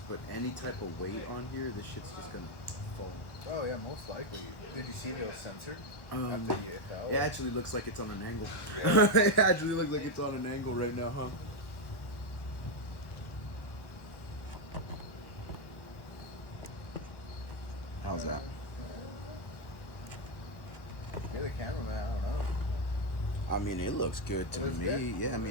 put any type of weight on here, this shit's just gonna fall. Oh yeah, most likely. Did you see if it was censored Um, after you fell? It actually looks like it's on an angle. It actually looks like it's on an angle right now, huh? How's that? You're the cameraman. I don't know. I mean, it looks good to looks me. good? Yeah, I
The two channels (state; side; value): late; right; 1.1 ms